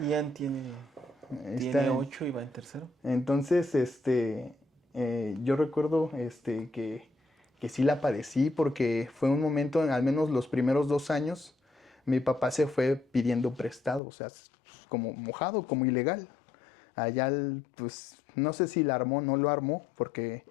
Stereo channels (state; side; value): drops out; right; at 14.0 s